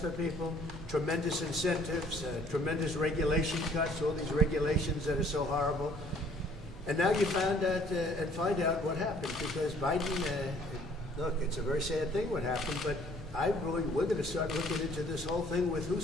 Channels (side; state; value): both; normal; correlation 0.58